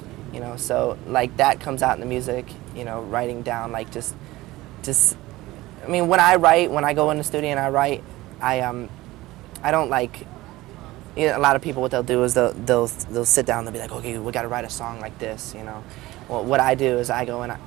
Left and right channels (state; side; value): quieter; left; 18.4 dB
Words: you know, so, like, that comes out in the music, you know, writing down, like, just, I mean, when I go in the studio and I write, I don't, like, you know, a lot of people, what they'll do is they'll sit down and they'll be like, okay, we got to write a song like this, you know. Well, what I do is I go in